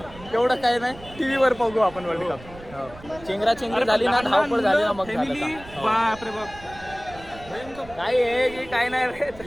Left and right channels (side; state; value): right; noise; rumble, 18 dB below the sound